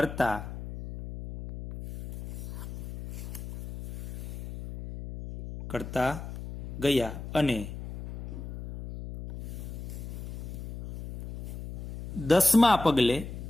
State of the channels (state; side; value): noise; left; hum, 10 dB below the sound